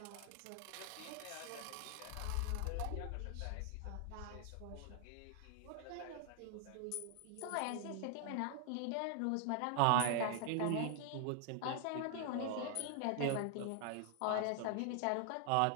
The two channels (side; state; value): both; different; correlation 0.00